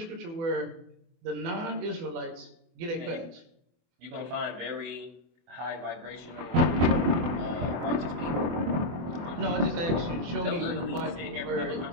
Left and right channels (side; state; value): left; late; 24 ms